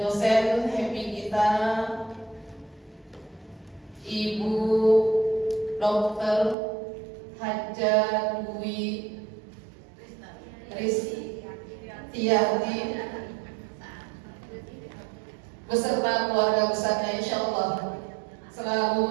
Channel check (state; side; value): drops out; left; at 6.6 s